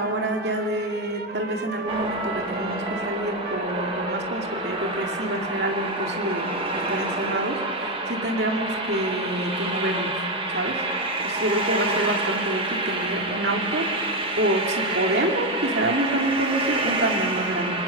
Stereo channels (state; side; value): normal; both; correlation 0.08